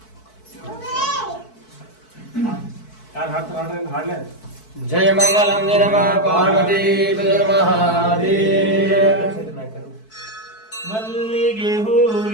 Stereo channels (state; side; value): late; right; 4.6 ms